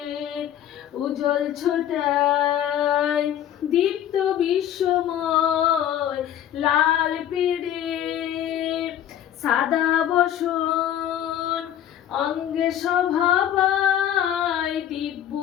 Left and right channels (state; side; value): quieter; right; 10.9 dB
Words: উজ্জ্বল ছোটায় দীপ্ত বিশ্বময় লাল পেড়ে সাদা বসন অঙ্গে শোভা পায় দিব্য